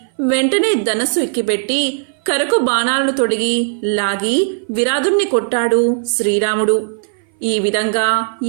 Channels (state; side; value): silent; left; 59 dB below the other